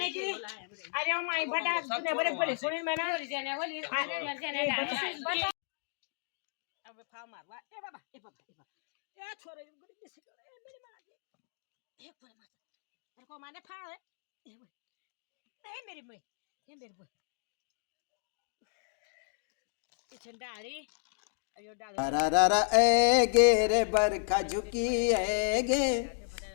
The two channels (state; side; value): silent; right; digital silence